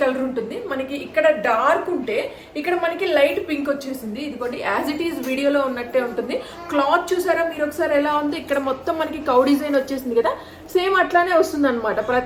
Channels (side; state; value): both; identical; correlation 1.00